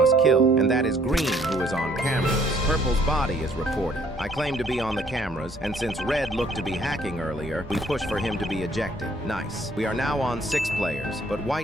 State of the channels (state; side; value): normal; both; correlation 0.62